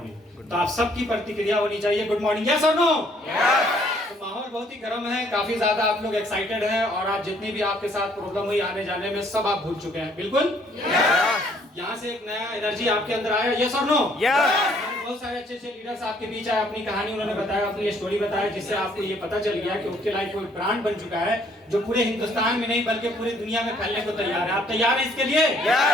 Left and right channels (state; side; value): normal; both; correlation 0.63